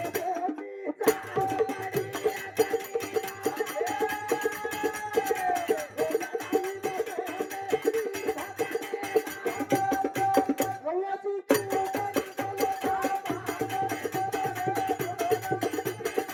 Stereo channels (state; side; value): identical; both; correlation 1.00